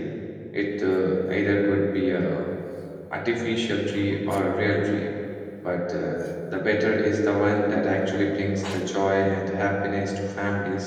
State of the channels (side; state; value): both; identical; correlation 1.00